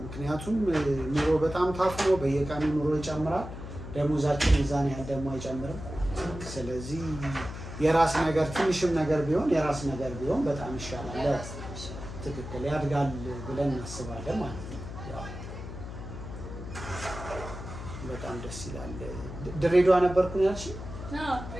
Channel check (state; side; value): noise; left; hum, 10 dB below the sound